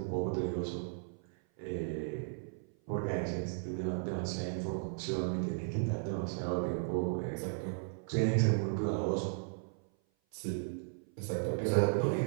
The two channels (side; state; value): left; silent; 54 dB below the other